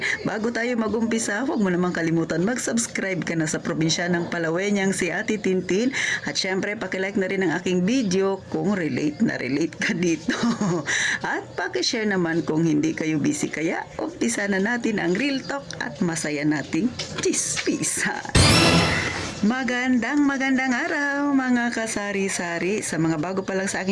bago tayo magumpisa, huwag mo namang kalimutan mag-subscribe ka na sa probinsya ng Palawenyang si Ate Tintin at syempre, pakilike na rin ang aking video kung relate na relate ka dito. At pakishare naman kung hindi kayo busy, kaya umpisa na natin ang real talk at masaya nating chismisan. Magandang araw mga kasari-sari. Sa mga bago pa lang sa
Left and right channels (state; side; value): identical; both; correlation 1.00